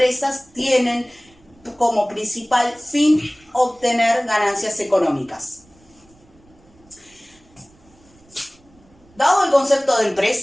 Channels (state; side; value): noise; right; rumble, 30 dB below the sound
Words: tienen como principal fin obtener ganancias económicas. Dado el concepto de